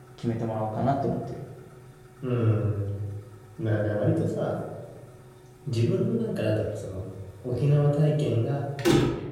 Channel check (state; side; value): identical; both; correlation 1.00